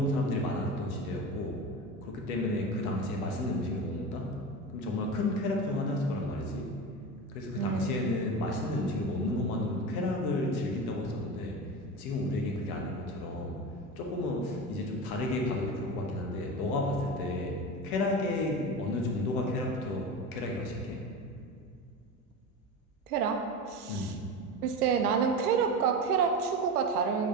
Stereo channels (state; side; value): normal; both; correlation 0.26